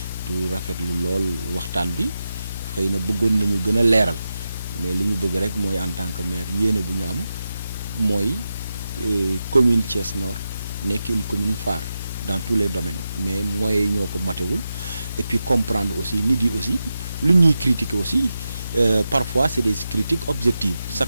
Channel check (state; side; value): inverted; both; correlation -0.90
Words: du rafetlu lool waxtaan bi xëy na bëggoon nañu gën a leeral mais li ñu bëgg rek mooy en tant que maire yéene bu ñu am mooy commune Thiès Nord nekk une commune phare dans tous les domaines mais mooy ñoo ko matewul et puis comprendre aussi nit yi aussi lu ñuy critiquer aussi parfois c'est des critiques objectives